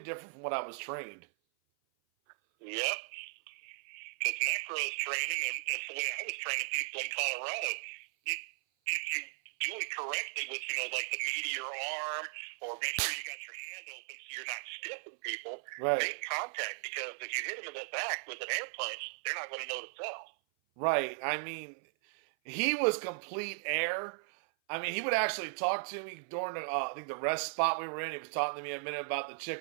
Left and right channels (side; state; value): left; silent; 53 dB below the other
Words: from what I was trained. Yep. Because Necro's training, and that's the way I was training people in Colorado. If you do it correctly with, like the meteor arm, or make sure you got your hand open so you're not stiffing people, right. Make contact, because if you hit them in the back with an air punch, they're not going to know to sell. Right. I mean, he was complete air. I mean, he would actually talk to me during I think the rest spot we were in. He was talking to me a minute about the